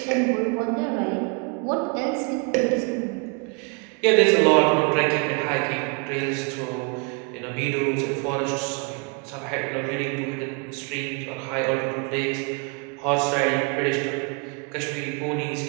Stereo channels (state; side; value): quieter; left; 34.6 dB